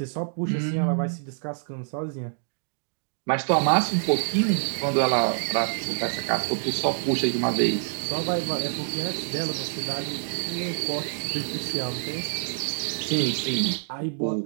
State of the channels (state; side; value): silent; left; digital silence